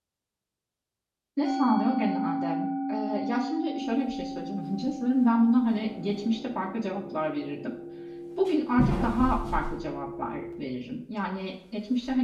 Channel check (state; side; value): identical; both; correlation 1.00